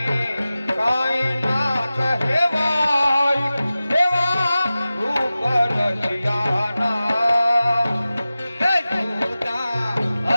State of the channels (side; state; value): both; inverted; correlation -0.96